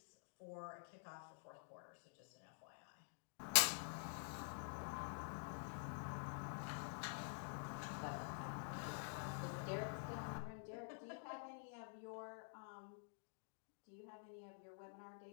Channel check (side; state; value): right; silent; digital silence